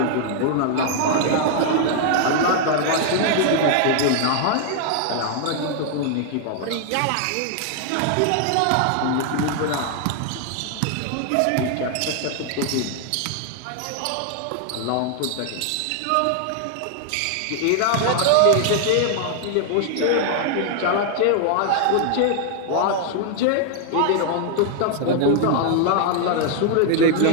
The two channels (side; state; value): both; different; correlation 0.00